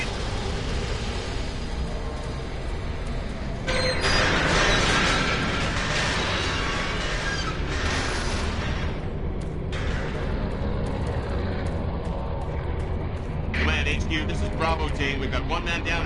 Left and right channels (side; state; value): both; identical; correlation 1.00